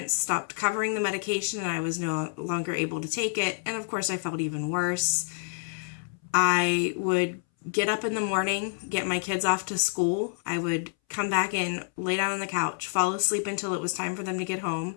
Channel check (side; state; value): right; silent; 59 dB below the other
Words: stopped covering the medication and I was no longer able to take it. And of course, I felt even worse. I would get up in the morning, get my kids off to school. I would come back in, lay down on the couch, fall asleep until it was time for them to get